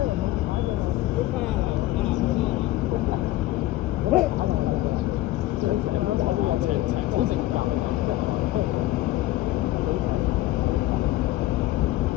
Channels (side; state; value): right; quieter; 16.1 dB